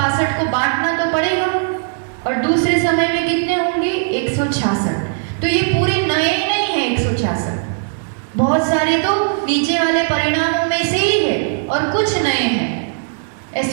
को बांटना तो पड़ेगा। और दूसरे समय में कितने होंगे 166। तो ये पूरे नए नहीं है 166, बहुत सारे तो नीचे वाले परिणामों में से ही है और कुछ नए हैं।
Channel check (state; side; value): silent; left; 67 dB below the other